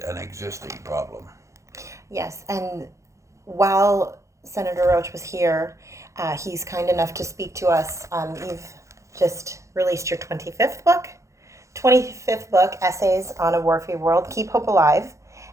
an existing problem. Yes, and while Senator Roche was here, he's kind enough to speak to us. You've just released your 25th book, Essays on a War-Free World, Keep Hope Alive.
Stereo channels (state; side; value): late; left; 0.15 ms